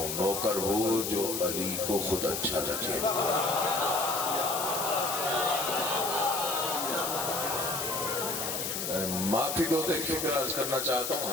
نوکر وہ جو علی کو خود اچھا لگے۔ معافی دو تو ایک فکر عرض کرنا چاہتا ہوں،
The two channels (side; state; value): left; noise; hiss, 3 dB below the sound